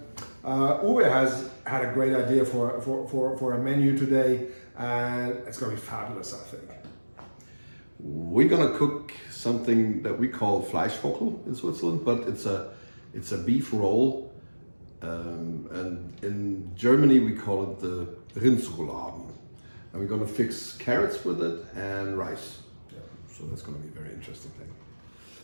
Uwe has had a great idea for a menu today, and it's going to be fabulous, I think. We're gonna cook something that we call Fleischvogel in Switzerland, but it's a beef roll, and in Germany we call it the Rindsrouladen. And we're gonna fix carrots with it and rice. Yeah, so that's gonna be a very interesting thing.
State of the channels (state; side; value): inverted; both; correlation -1.00